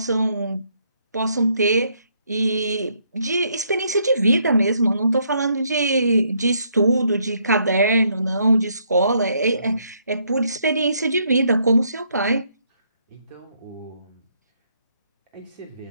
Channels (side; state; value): both; inverted; correlation -0.72